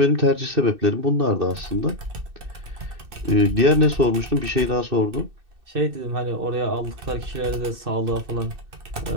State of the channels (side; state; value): left; late; 2.6 ms